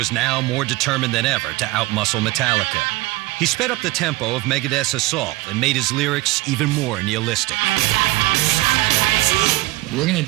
now more determined than ever to outmuscle Metallica. He sped up the tempo of Megadeth's assault and made his lyrics even more nihilistic. We're going to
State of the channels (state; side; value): quieter; left; 19.9 dB